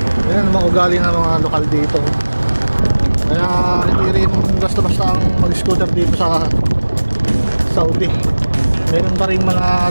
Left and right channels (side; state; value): both; inverted; correlation -1.00